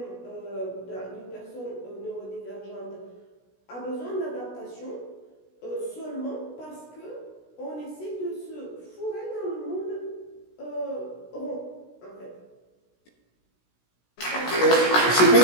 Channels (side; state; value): right; late; 16 ms